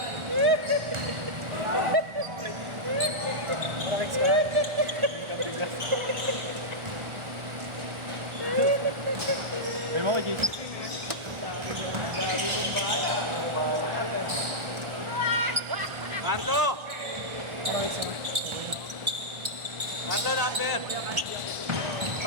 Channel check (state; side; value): late; left; 1.4 ms